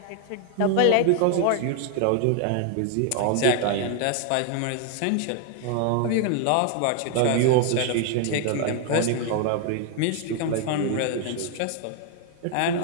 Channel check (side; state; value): both; different; correlation 0.00